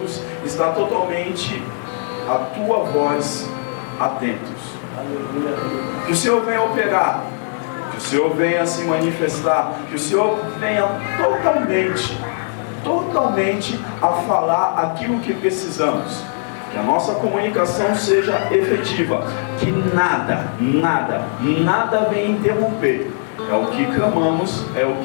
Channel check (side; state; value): right; silent; digital silence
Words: está totalmente a tua voz atentos. Que o Senhor venha operar, que o Senhor venha se manifestar, que o Senhor venha totalmente a falar aquilo que precisamos. Que a nossa comunicação seja efetiva, que nada venha interromper. É o que clamamos, é o